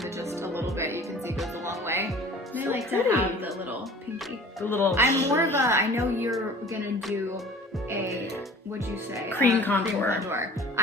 it just a little bit, you can see, goes a long way. And I like to pretty. have the little pinky. The little. I'm more of a, I know you're gonna do a, what'd you say? Cream contour. contour.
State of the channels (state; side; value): normal; both; correlation 0.45